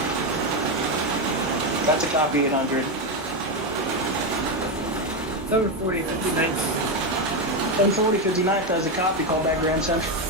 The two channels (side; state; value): both; normal; correlation 0.09